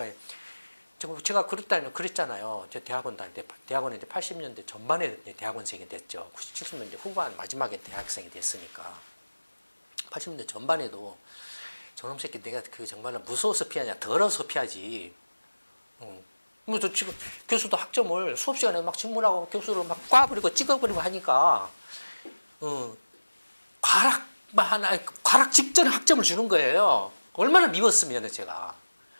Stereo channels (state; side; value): inverted; both; correlation -1.00